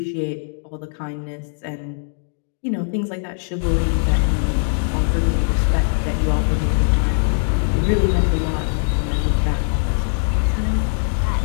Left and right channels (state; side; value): silent; right; digital silence